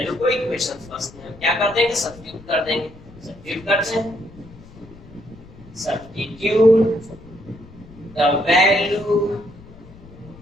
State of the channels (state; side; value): noise; left; rumble, 20 dB below the sound